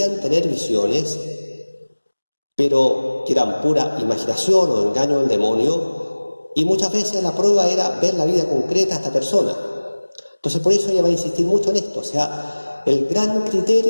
tener visiones, pero que eran pura imaginación o engaño del demonio, y muchas veces la prueba era ver la vida concreta de esta persona. Entonces por eso ella va a insistir mucho en esto, o sea, el gran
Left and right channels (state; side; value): inverted; both; correlation -1.00